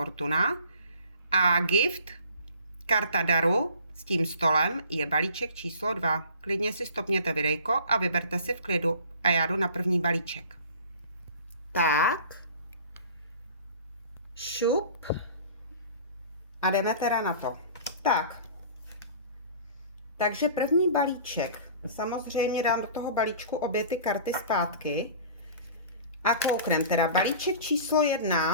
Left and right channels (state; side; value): inverted; both; correlation -0.45